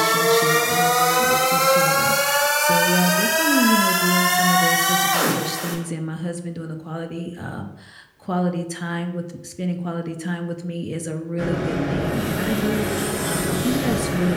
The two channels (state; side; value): identical; both; correlation 1.00